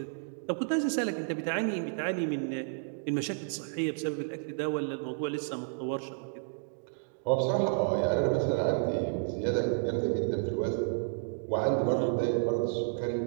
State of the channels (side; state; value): left; silent; digital silence